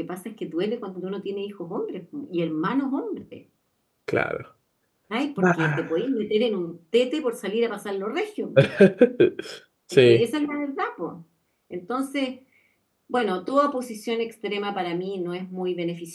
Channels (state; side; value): identical; both; correlation 1.00